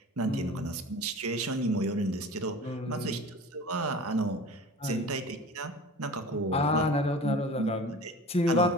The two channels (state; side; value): normal; both; correlation 0.39